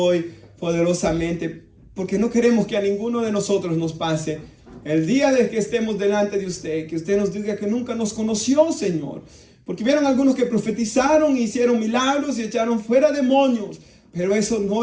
poderosamente, porque no queremos que a ninguno de nosotros nos pase el día de que estemos delante de usted, que usted nos diga que nunca nos conoció, Señor, porque vieron algunos que profetizaron, hicieron milagros y echaron fuera demonios, pero eso no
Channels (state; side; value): identical; both; correlation 1.00